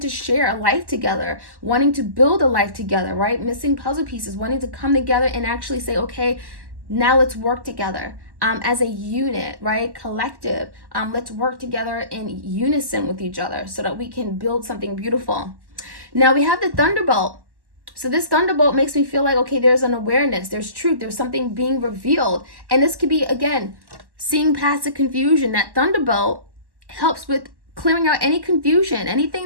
to share a life together, wanting to build a life together, right? Missing puzzle pieces, wanting to come together and actually say, okay, now let's work together as a unit, right? Collective. Let's work together in unison with each other so that we can build something beautiful. Now we have the thunderbolt. So this thunderbolt makes me feel like, okay, there's an awareness, there's truth, there's something being revealed. And this could be, again, seeing past the confusion. That thunderbolt helps with clearing out any confusion, anything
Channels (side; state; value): left; late; 1.1 ms